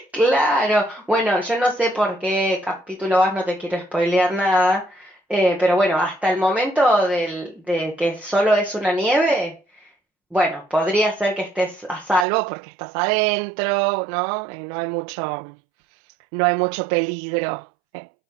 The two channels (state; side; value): drops out; left; at 12.2 s